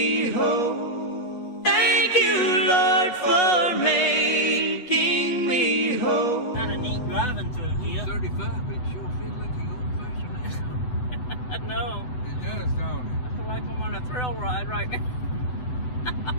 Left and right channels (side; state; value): right; late; 8.3 ms